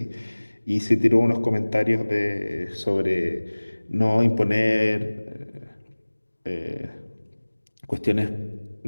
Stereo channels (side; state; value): both; inverted; correlation -1.00